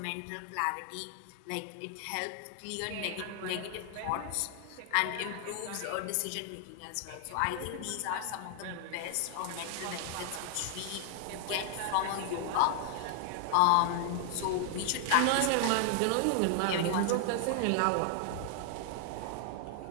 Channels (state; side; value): different; both; correlation 0.00